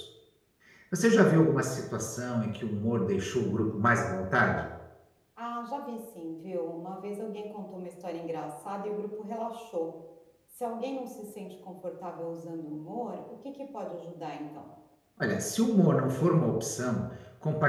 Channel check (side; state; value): both; identical; correlation 1.00